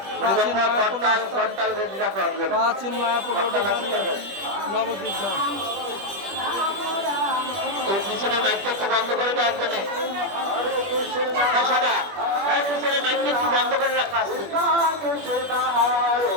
প্রাচীন মায়াপুর নবদ্বীপ ধাম। পিছনে মাইকটা একটু বন্ধ করে রাখবেন। পিছনে মাইকটা একটু বন্ধ করে রাখা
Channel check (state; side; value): late; left; 21 ms